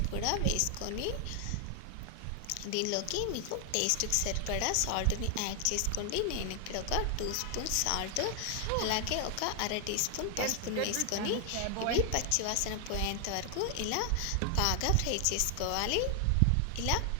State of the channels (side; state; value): both; different; correlation 0.00